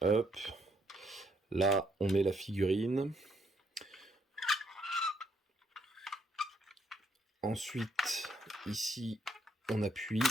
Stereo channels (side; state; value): both; normal; correlation 0.72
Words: Hop, là on met la figurine. Ensuite ici on appuie.